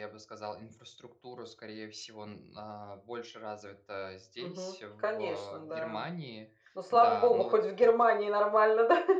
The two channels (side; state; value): both; identical; correlation 1.00